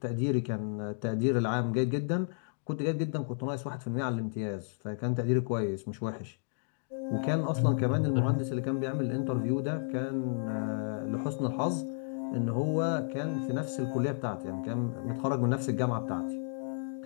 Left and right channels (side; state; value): right; silent; digital silence